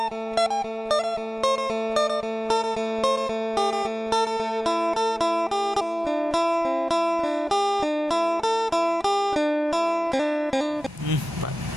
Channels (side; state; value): both; normal; correlation 0.98